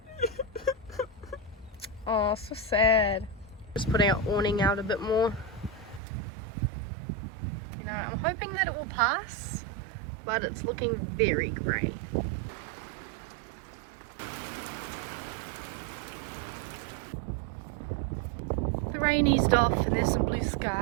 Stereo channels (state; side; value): drops out; left; at 6.0 s